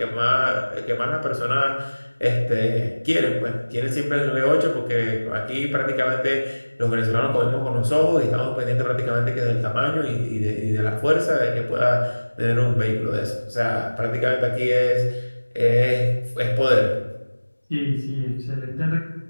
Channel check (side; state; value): both; inverted; correlation -1.00